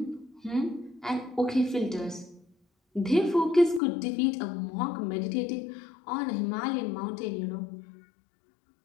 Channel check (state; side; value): drops out; right; at 3.8 s